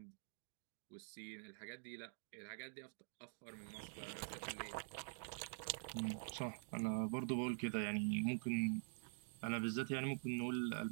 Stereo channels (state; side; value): silent; left; digital silence